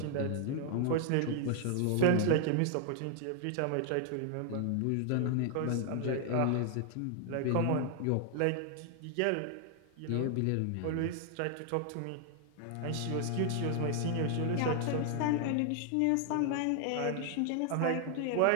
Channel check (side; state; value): both; different; correlation 0.00